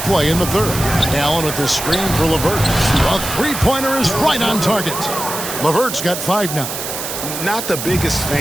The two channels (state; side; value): noise; right; hiss, 6 dB below the sound